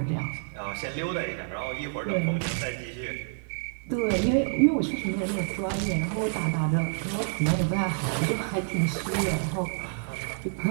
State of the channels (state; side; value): silent; left; 59 dB below the other